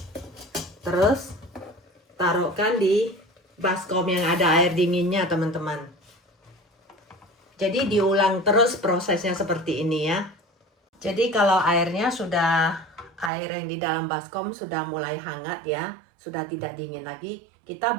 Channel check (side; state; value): left; drops out; at 13.3 s